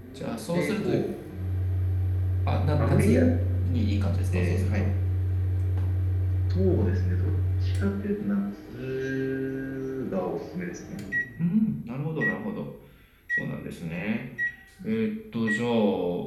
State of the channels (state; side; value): identical; both; correlation 1.00